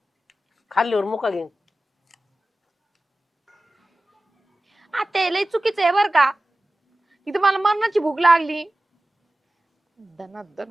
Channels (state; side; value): normal; both; correlation 0.96